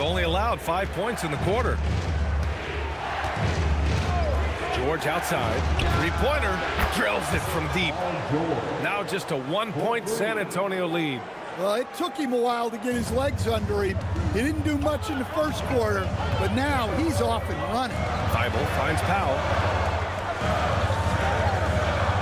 only allowed 5 points in the quarter. George outside. 3-pointer. Drills it from deep. Now just a 1-point San Antonio lead. Well, it took him a while to get his legs under him. He didn't do much in the first quarter, but now he's off and running. Thibault finds Powell.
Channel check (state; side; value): identical; both; correlation 1.00